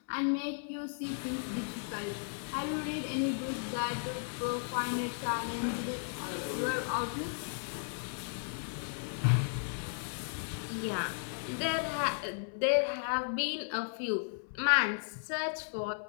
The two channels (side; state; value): right; silent; 54 dB below the other